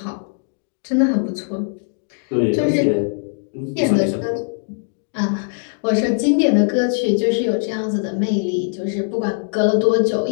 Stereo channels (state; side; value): silent; right; 65 dB below the other